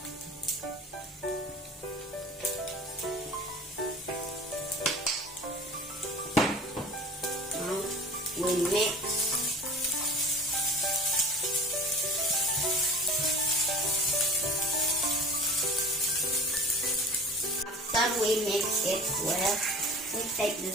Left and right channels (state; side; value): normal; both; correlation 0.40